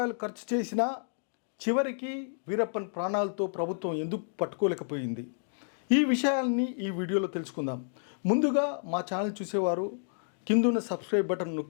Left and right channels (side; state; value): right; silent; digital silence